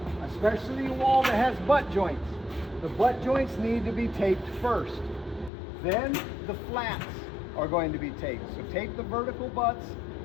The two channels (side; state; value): right; drops out; at 5.5 s